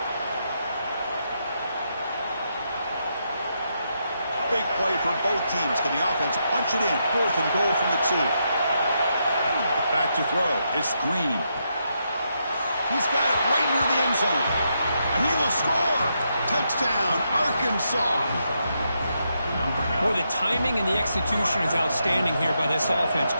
Big play for both teams. Can the offense punch it in? 4th and goal from the 2. Back to throw. It's Green. He's got it right near the end zone. And he will score. Touchdown, Arkansas. Boy, the timing and the execution is outstanding here by this offense.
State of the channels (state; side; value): inverted; both; correlation -0.81